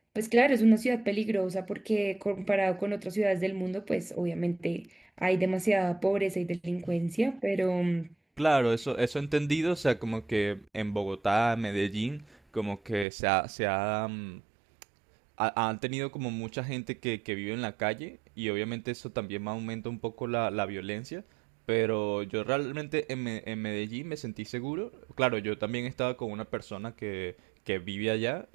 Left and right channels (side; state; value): left; drops out; at 13.1 s